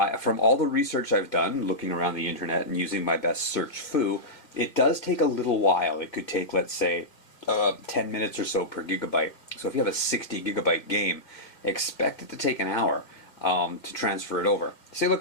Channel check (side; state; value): right; late; 1.9 ms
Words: From all the research I've done, looking around the internet and using my best search foo, it does take a little while. It could take, let's say, 10 minutes or so per gigabyte. So if you have a 60 gigabyte game, expect it to take an hour to transfer it over. See,